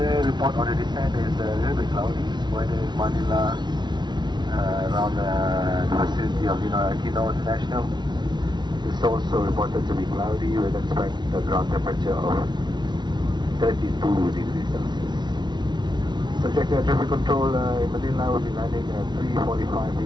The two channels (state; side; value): late; left; 0.21 ms